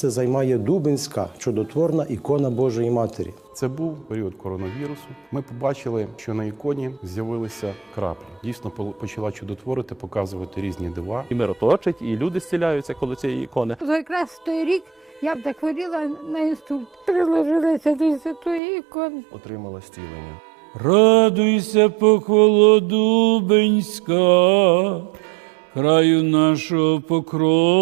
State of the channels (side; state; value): left; drops out; at 18.6 s